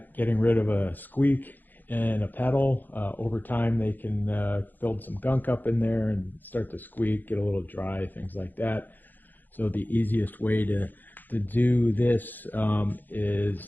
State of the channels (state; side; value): late; right; 0.087 ms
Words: getting rid of a squeak and a pedal. Over time they can build some gunk up in there and start to squeak, get a little dry, things like that. So the easiest way to do this